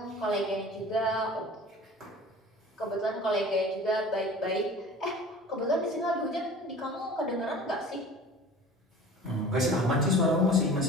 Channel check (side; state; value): both; normal; correlation 0.42